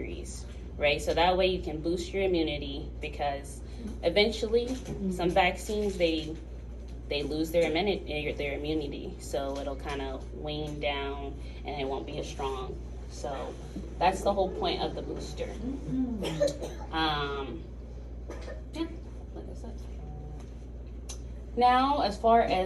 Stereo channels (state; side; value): identical; both; correlation 1.00